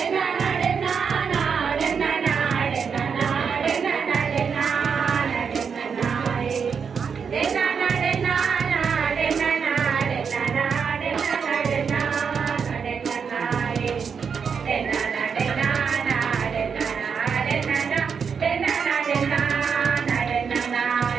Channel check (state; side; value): quieter; left; 6.3 dB